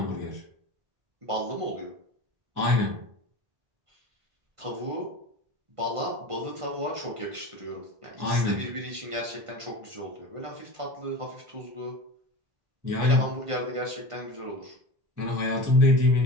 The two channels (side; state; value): left; late; 1.5 ms